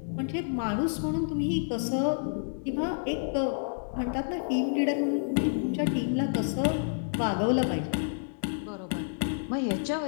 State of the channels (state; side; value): silent; right; digital silence